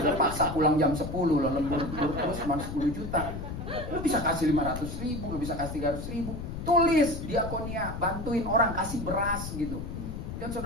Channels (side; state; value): left; noise; rumble, 7 dB below the sound